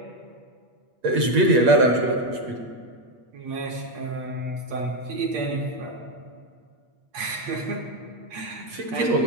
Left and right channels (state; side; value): late; left; 8.4 ms